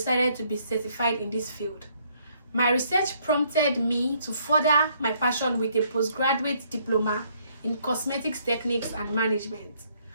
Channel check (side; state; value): both; inverted; correlation -0.67